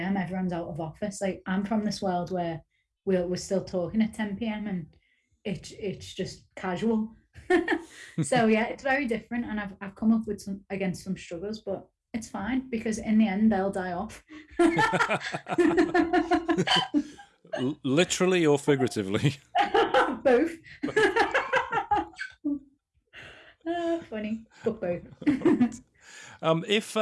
everyone's out of office. Like, I'm from this world where we're still talking at 10 p.m. and it's just casual. So yeah, it's very different, and I've come up with some struggles, but it's fine because in the end they'll die off. Literally or figuratively? Both. Funny, but both. If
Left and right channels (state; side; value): identical; both; correlation 1.00